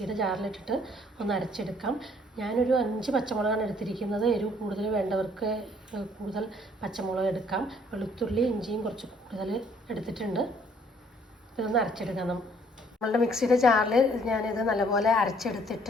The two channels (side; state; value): both; normal; correlation 0.61